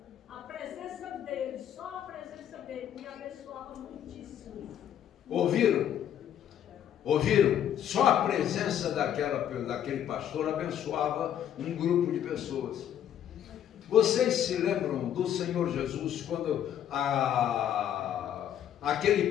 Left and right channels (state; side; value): quieter; right; 10.1 dB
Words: A presença dele, só a presença dele, me abençoava muitíssimo. Ouviram? Ouviram? Só a presença daquele pastor abençoava um grupo de pessoas. Vocês se lembram do Senhor Jesus quando